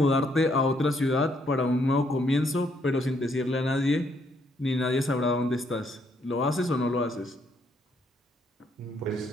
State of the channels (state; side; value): normal; both; correlation 0.72